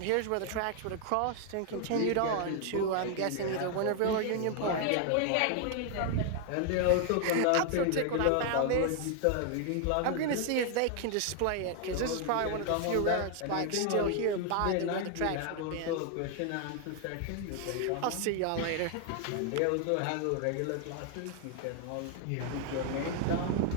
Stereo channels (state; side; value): different; both; correlation 0.00